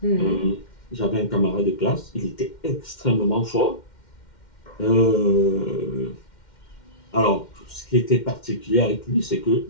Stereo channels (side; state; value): right; late; 2.1 ms